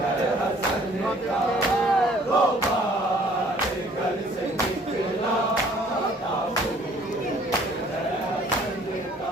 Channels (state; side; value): normal; both; correlation 0.57